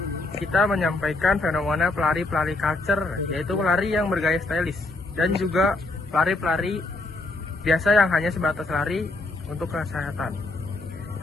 kita menyampaikan fenomena pelari-pelari culture, yaitu pelari yang bergaya stylish dan juga pelari-pelari biasa yang hanya sebatas lari untuk kesehatan.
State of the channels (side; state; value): right; quieter; 3.0 dB